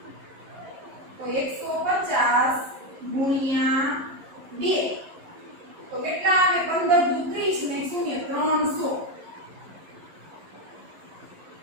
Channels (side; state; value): left; late; 11 ms